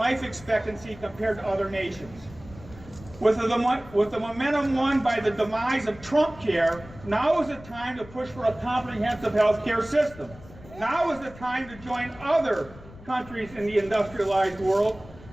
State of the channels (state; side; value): noise; left; rumble, 19 dB below the sound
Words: expectancy compared to other nations. With the momentum won by the demise of Trump care, now is the time to push for a comprehensive health care system. Now is the time to join other countries in the industrialized world